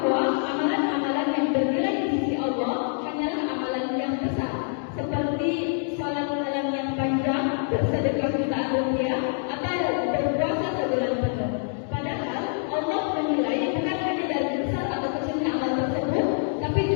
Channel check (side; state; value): right; silent; 61 dB below the other